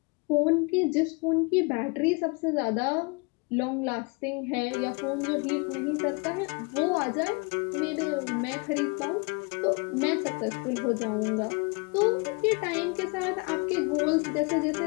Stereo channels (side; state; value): right; quieter; 30.6 dB